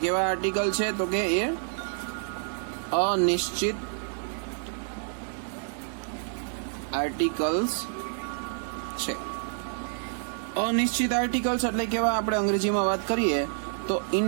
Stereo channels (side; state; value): left; silent; 59 dB below the other